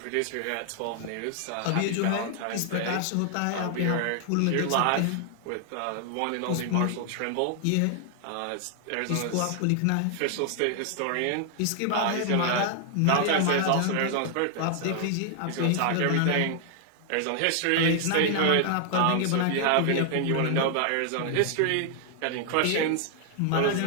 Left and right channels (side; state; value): both; different; correlation 0.00